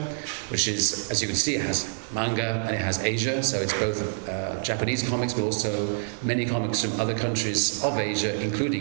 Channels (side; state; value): left; silent; 58 dB below the other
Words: which is, as you can see, it has manga and it has Asia, so it's both Japanese comics, but also many comics from other countries of Asia,